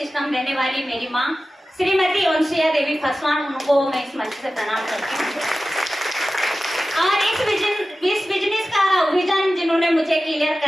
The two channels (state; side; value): normal; both; correlation 0.95